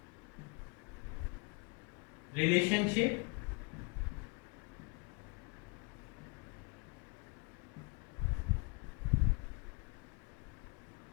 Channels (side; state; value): right; quieter; 30.2 dB